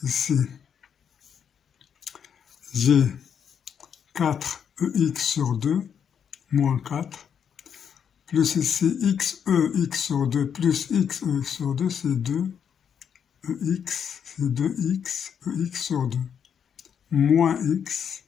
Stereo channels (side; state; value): right; quieter; 7.8 dB